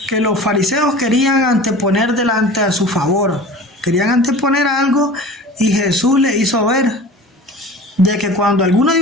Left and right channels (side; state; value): both; normal; correlation 0.39